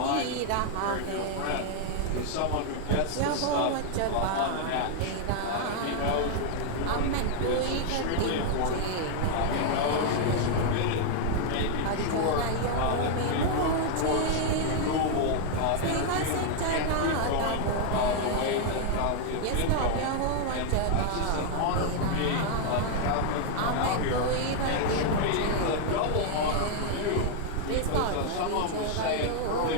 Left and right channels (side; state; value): both; different; correlation 0.00